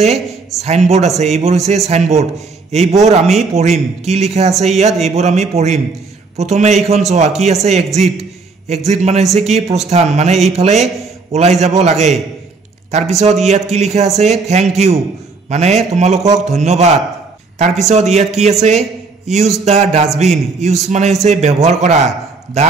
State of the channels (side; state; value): left; quieter; 4.2 dB